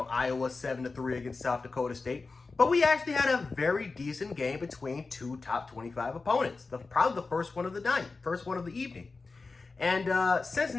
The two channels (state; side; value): quieter; right; 4.0 dB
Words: against South Dakota State. But we actually had a very decent game between two top 25 opponents. Probably the first one of the night, first one of the evening. And